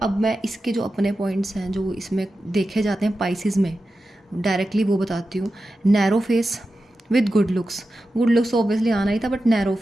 मैं इसके जो अपने पॉइंट्स हैं जो इसमें देखे जाते हैं पाइसेस में, डायरेक्टली वो बताती हूँ। Narrow face, with good looks तो ऑब्वियसली आना ही था, बट नैरो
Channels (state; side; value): normal; both; correlation 0.92